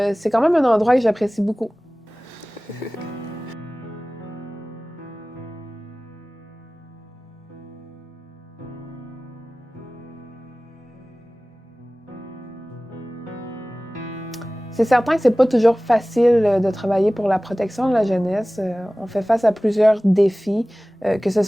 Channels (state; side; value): normal; both; correlation 0.98